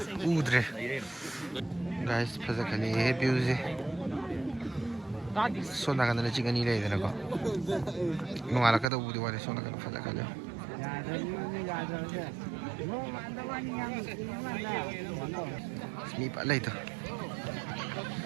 udre. Guys, bây giờ cái này view gì? Số nào cái này chỉ cái này đây nè con. Ngoài là cái đâu đi qua đây số nào cái nó phải là cái nào? Mi bạn lấy thôi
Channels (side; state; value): left; drops out; at 8.8 s